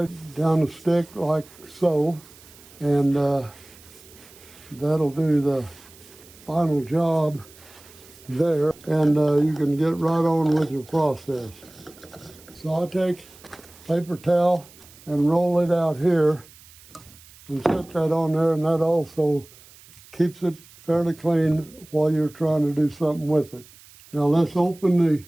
down the stick like so, and that'll do the final job there, and you can get right on with your process. So I'll take paper towel and roll it out here and set that on there, and that also keeps it fairly clean while you're trying to do something with it. Now let's open the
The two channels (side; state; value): right; noise; hiss, 23 dB below the sound